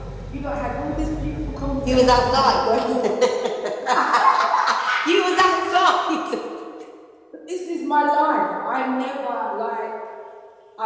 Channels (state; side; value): identical; both; correlation 1.00